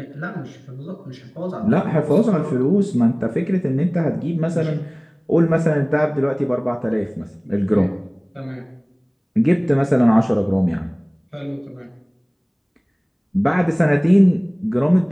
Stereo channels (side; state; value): both; identical; correlation 1.00